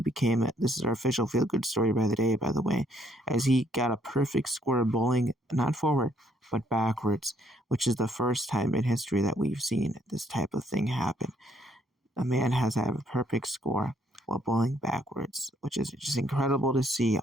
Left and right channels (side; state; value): both; normal; correlation 0.68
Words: this is our official feel-good story by the day, by the way, as he got a perfect score bowling, not forward, but backwards, which is the first time in history that we've seen this type of thing happen. A man has had a perfect score while bowling backwards, which is just incredible to see